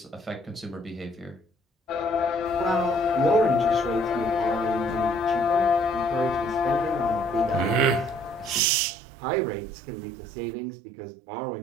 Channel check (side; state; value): left; drops out; at 8.6 s